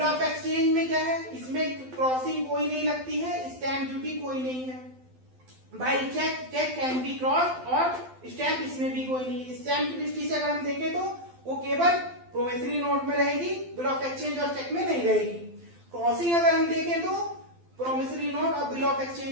ऑफ एक्सचेंज में क्या है, इसमें क्रॉसिंग कोई नहीं लगती है, स्टैम्प ड्यूटी कोई नहीं है। By cheque can be cross और स्टैम्प इसमें भी कोई नहीं। स्टैम्प की दृष्टि से अगर हम देखें तो वो केवल प्रोमिसरी नोट में रहेगी, बिल ऑफ एक्सचेंज और चेक में नहीं रहेगी। क्रॉसिंग अगर हम देखें तो प्रोमिसरी नोट और बिल ऑफ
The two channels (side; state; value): left; late; 12 ms